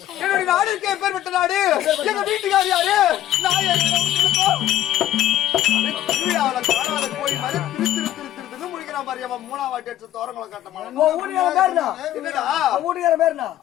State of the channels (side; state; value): right; quieter; 12.8 dB